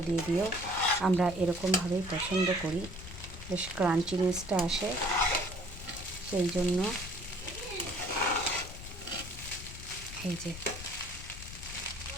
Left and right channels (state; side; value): noise; left; rumble, 12 dB below the sound